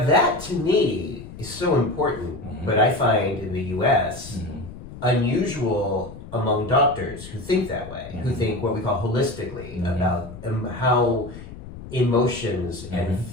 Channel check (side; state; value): left; noise; rumble, 14 dB below the sound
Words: that to me is so important, but I find in the U.S. Unusual among doctors who think that way, who think what we call holistically about how emotions and